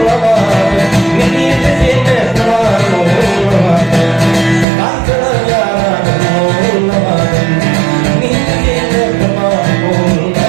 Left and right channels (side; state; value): left; drops out; at 4.7 s